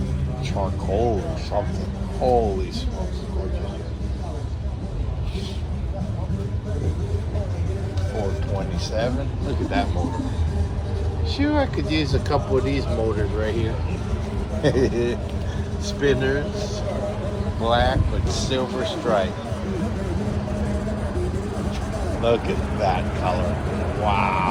charcoal or something. Holy smokes, gorgeous. 427. Look at that motor. Sure, I could use a couple of these motors right here. Spinners, black with silver stripe. Look at that color.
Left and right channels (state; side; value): identical; both; correlation 1.00